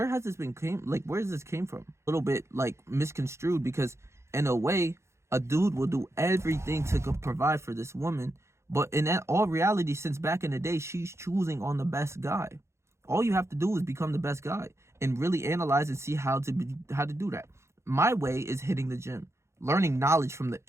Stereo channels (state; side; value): late; left; 0.13 ms